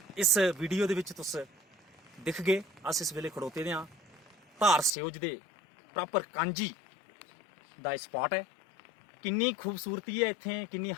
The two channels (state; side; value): drops out; right; at 4.9 s